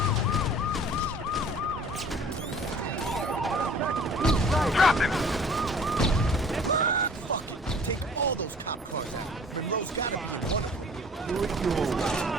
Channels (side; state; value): both; normal; correlation 0.49